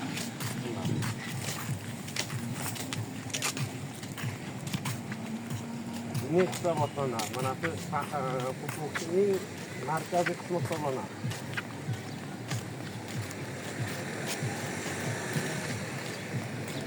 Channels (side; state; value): both; identical; correlation 1.00